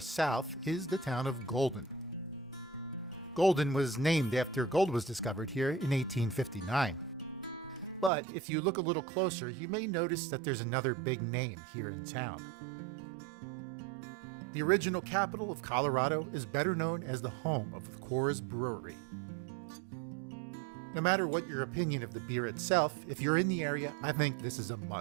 is the town of Golden. Golden was named after gold was discovered here in 1859. But if you look a little closer, you may notice that there's another big name here in town. The original capital of Colorado is better known as the home of the Coors Brewery. No matter what your opinion of the beer itself, if you're in the area, I think this is a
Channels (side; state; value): left; drops out; at 8.1 s